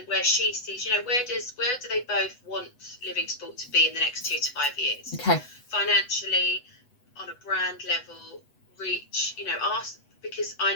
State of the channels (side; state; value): right; late; 8.0 ms